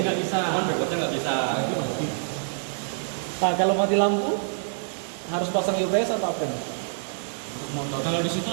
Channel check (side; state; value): left; silent; 61 dB below the other